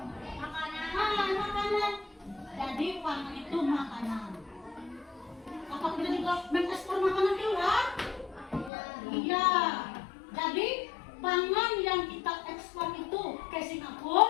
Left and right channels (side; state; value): right; drops out; at 8.7 s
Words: Makanan. Jadi pangan itu makanan. Apa kita juga mengekspor makanan keluar? Iya. Jadi pangan yang kita ekspor itu ke